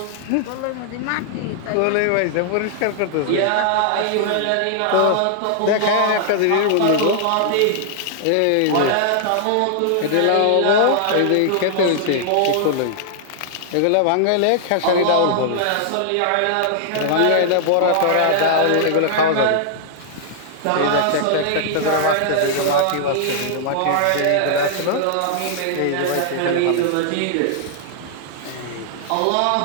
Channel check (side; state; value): both; different; correlation -0.01